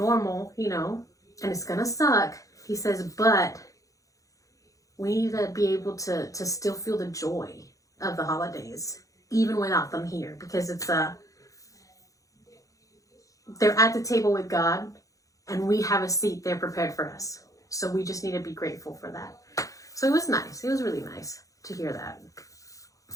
you know, and it's going to suck. He says, but we need to be able to still feel the joy of the holidays, even without them here, because they're at the table with God, and we have a seat there prepared for us. So we just need to be grateful for that. So it was nice. It was really nice to hear that.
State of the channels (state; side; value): late; right; 0.16 ms